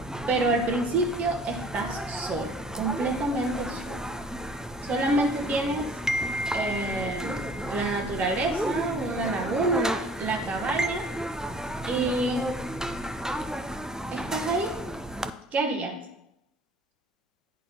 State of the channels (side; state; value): both; normal; correlation 0.50